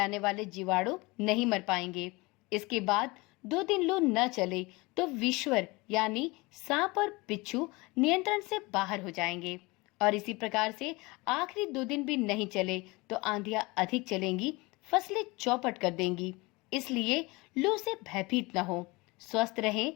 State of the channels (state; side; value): quieter; right; 24.2 dB